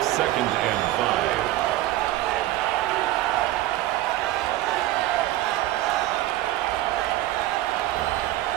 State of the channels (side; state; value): left; quieter; 15.7 dB